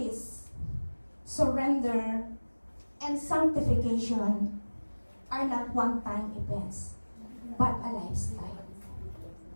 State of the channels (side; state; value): both; inverted; correlation -1.00